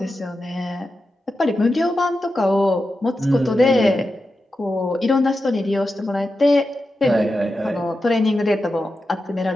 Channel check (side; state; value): both; normal; correlation 0.90